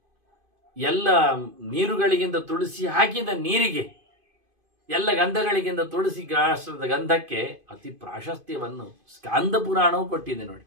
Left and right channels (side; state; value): left; late; 2.5 ms